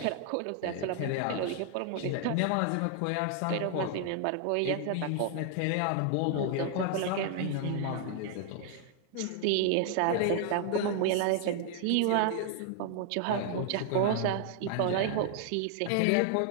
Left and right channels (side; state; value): both; different; correlation 0.00